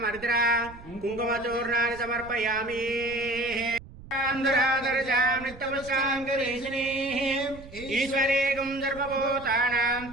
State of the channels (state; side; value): noise; right; rumble, 18 dB below the sound